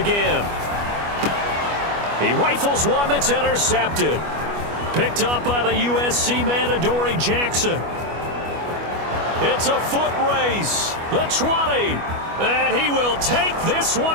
He rifles one that's intercepted. Picked up by the USC man, Adoree Jackson. It's a foot race. The 20. And he will take this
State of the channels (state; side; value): late; left; 25 ms